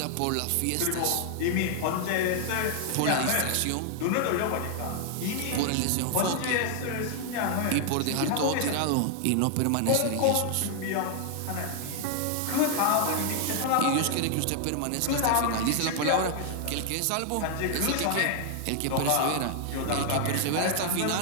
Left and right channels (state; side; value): different; both; correlation 0.00